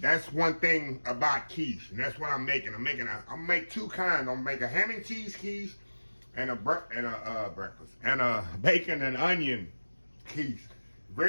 That's one thing about quiche, and that's what I'm making. I'm make two kinds. I'm make a ham and cheese quiche and a breakfast and a bacon and onion quiche.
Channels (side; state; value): both; inverted; correlation -1.00